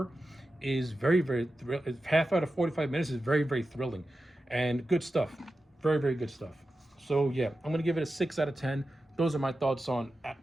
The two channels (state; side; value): normal; both; correlation 0.92